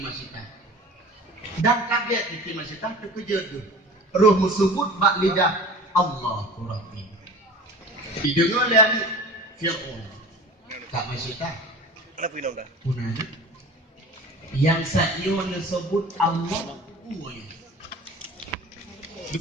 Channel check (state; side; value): normal; both; correlation 0.39